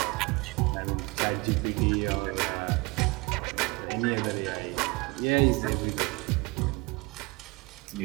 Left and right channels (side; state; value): left; quieter; 25.1 dB